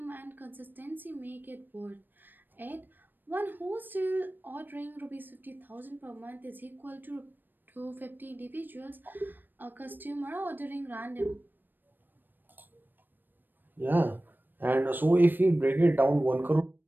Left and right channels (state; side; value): late; left; 0.092 ms